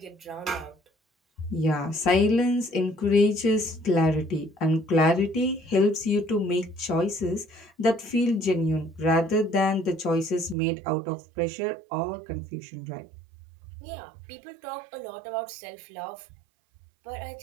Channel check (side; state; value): left; drops out; at 10.6 s